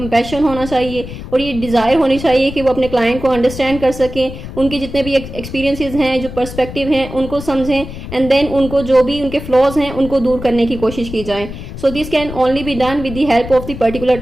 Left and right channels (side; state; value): left; noise; rumble, 11 dB below the sound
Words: होना चाहिए और ये डिज़ायर होनी चाहिए कि वो अपने क्लाइंट को अंडरस्टैंड कर सकें, उनके जितने भी एक्सपीरियंसेस हैं, जो पर्सपेक्टिव हैं उनको समझें एंड देन उनको जो भी उनके फ्लॉज हैं उनको दूर करने की कोशिश की जाए. So this can only be done with the help of the particular